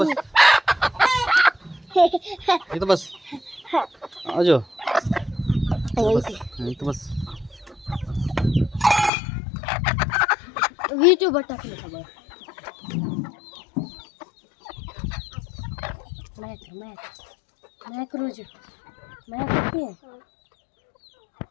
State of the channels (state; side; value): drops out; right; at 9.1 s